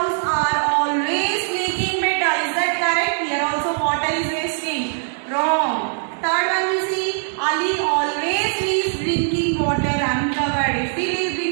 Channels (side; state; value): left; silent; digital silence